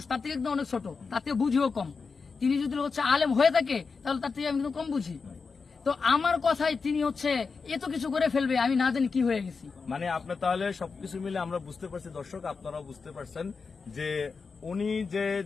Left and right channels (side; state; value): right; quieter; 4.9 dB